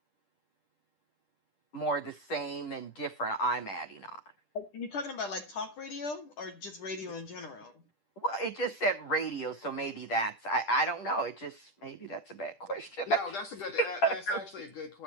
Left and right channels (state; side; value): late; right; 10 ms